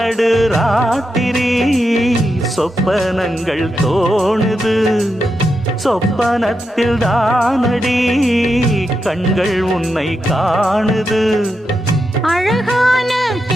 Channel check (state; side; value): normal; both; correlation 0.86